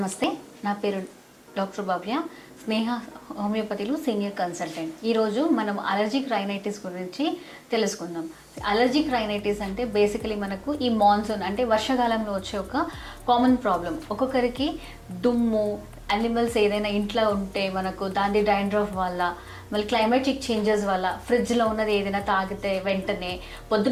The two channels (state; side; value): identical; both; correlation 1.00